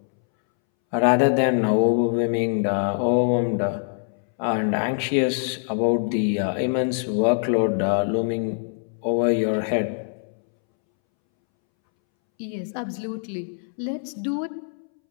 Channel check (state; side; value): silent; right; 63 dB below the other